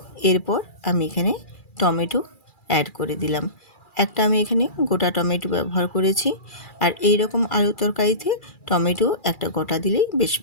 এরপর আমি এখানে টমেটো অ্যাড করে দিলাম। একটা আমি এখানে গোটা টমেটো ব্যবহার করেছি। আর এই রকম আলু তরকারিতে টমেটো একটা গোটা দিলেই বেশ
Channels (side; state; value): right; late; 2.4 ms